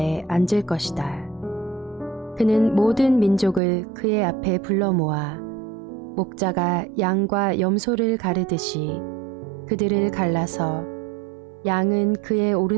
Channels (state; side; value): drops out; left; at 3.6 s